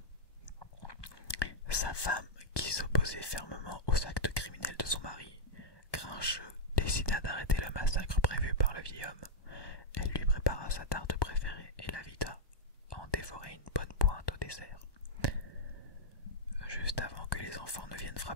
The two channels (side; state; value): right; late; 1.2 ms